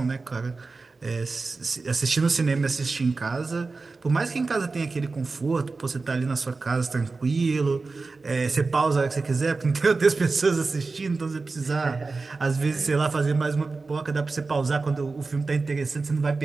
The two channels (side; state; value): left; quieter; 4.0 dB